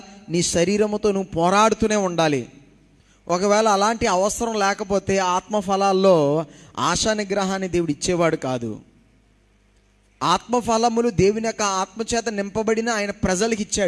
నీ శరీరముతో నువ్వు పోరాడుతూనే ఉండాలి. ఒకవేళ అలాంటి అవసరం లేకపోతే ఆత్మఫలాల్లో ఆశా నిగ్రహాన్ని దేవుడు ఇచ్చేవాడు కాదు. ఆత్మఫలములు దేవుని యొక్క ఆత్మచేత నింపబడిన ఆయన ప్రజలకు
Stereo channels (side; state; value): both; identical; correlation 1.00